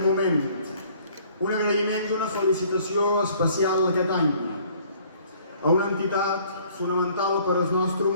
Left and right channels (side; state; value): both; inverted; correlation -0.57